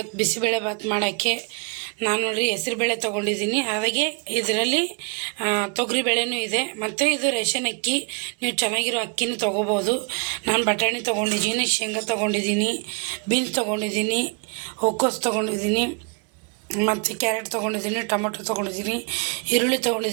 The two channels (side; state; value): left; quieter; 37.3 dB